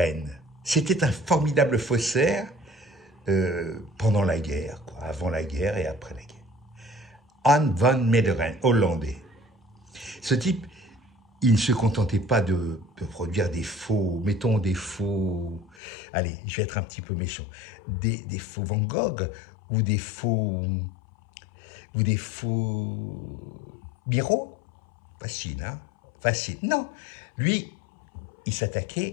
C'était un formidable faussaire pendant la guerre, quoi, avant la guerre et après la guerre. Anne van Meegeren, hollandais. Ce type, il ne se contentait pas de produire des faux, mettons des faux, allez, je vais être un petit peu méchant, des faux Van Gogh ou des faux Miro. Facile, hein? Facile. Non, lui, il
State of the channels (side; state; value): right; drops out; at 15.8 s